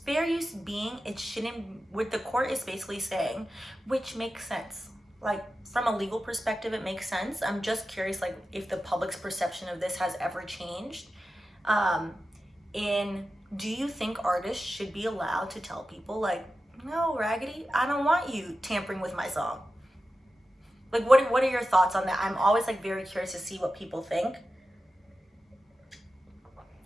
fair use being, it shouldn't, what the court is basically saying, which makes sense. Like, from a legal perspective, it makes sense. I'm just curious, like, if the public's perception of this has ever changed. Do you think artists should be allowed to tell people, like, no, Raggedy, I don't want you tampering with my song? Like, what are your thoughts on that? I'm always, like, very curious to see what people think.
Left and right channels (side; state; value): both; normal; correlation 0.92